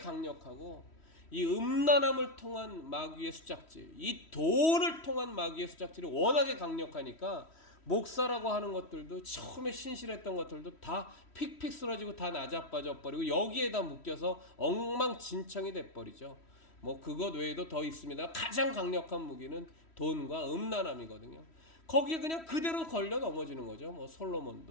이 음란함을 통한 마귀의 수작질, 이 돈을 통한 마귀의 수작질이 워낙에 강력하니까 목사라고 하는 것들도 처음에 신실했던 것들도 다 픽픽 쓰러지고 다 나자빠져 버리고 여기에다 묶여서 엉망진창이 돼버리죠. 뭐 그것 외에도 더 있습니다. 가장 강력한 무기는 돈과 음란함이거든요. 거기에 그냥 그대로 걸려 넘어지는 거죠. 뭐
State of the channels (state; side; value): late; right; 3.1 ms